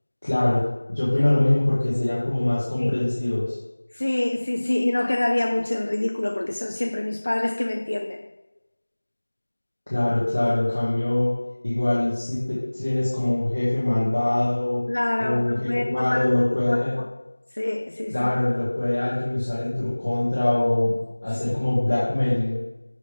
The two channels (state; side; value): inverted; both; correlation -1.00